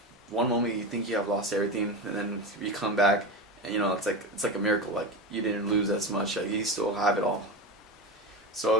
one moment you think you have lost everything, and then you come back and it's like a miracle. Like you didn't lose as much. Like you still have it all.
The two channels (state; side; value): normal; both; correlation 0.21